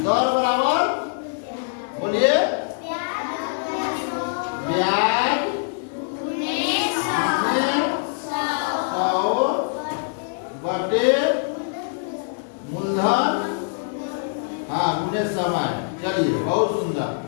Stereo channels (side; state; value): right; silent; digital silence